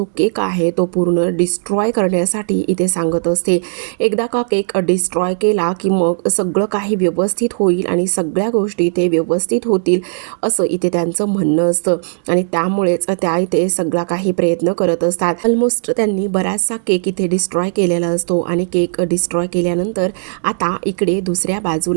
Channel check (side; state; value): left; silent; digital silence